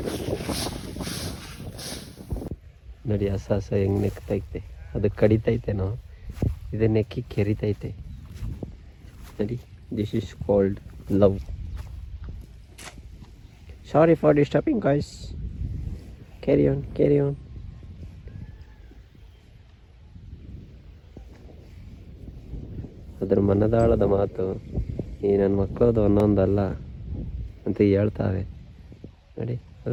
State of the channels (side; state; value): both; identical; correlation 1.00